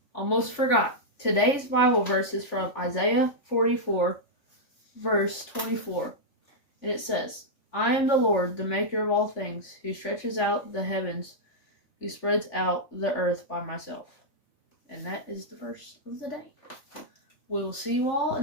Almost forgot. Today's Bible verse is from Isaiah 44, verse 24. And it says, I am the Lord, the maker of all things, who stretches out the heavens, who spreads out the earth by myself. And that is the verse of the day. We will see you all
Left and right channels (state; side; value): late; right; 3.5 ms